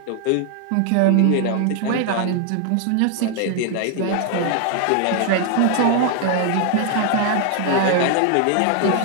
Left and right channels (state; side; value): different; both; correlation 0.00